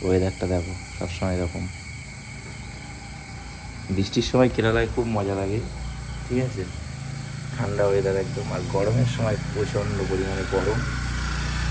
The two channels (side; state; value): both; identical; correlation 1.00